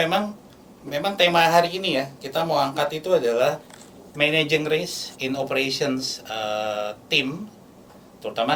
tema hari ini ya, kita mau angkat itu adalah Managing Risk in Operations Team.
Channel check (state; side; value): identical; both; correlation 1.00